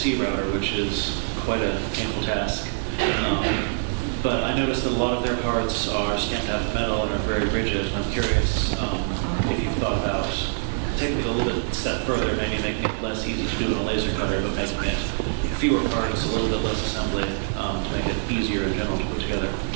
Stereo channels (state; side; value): silent; left; 62 dB below the other